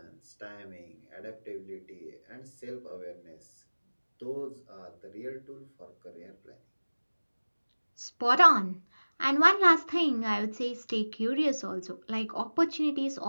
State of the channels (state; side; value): inverted; both; correlation -1.00